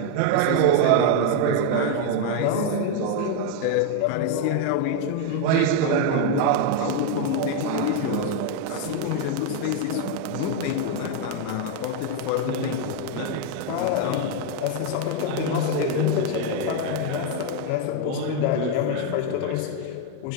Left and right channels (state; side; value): different; both; correlation 0.01